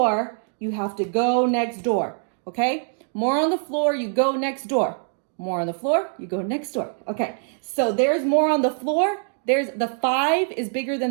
you have to go next door, okay? More on the floor, you go next door. More on the floor, you go next door. Okay, so there's more on the floor. There's the 5 is bigger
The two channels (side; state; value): left; silent; 57 dB below the other